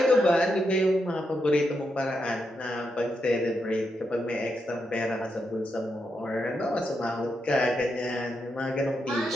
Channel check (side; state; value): both; normal; correlation 0.83